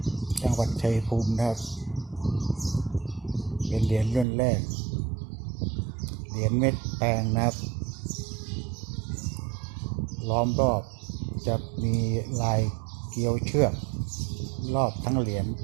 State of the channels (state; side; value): drops out; left; at 4.2 s